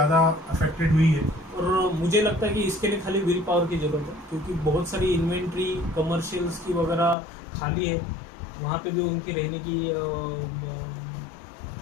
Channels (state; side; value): drops out; right; at 7.2 s